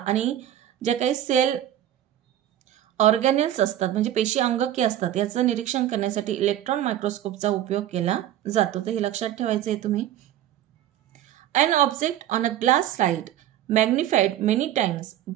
जे काही सेल ऑर्गॅनेल्स असतात म्हणजे पेशी अंगके असतात याचं निरीक्षण करण्यासाठी इलेक्ट्रॉन मायक्रोस्कोपचा उपयोग केला जातो. तर हे लक्षात ठेवायचं आहे तुम्ही. An object on a glass slide magnified many times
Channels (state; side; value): quieter; left; 12.1 dB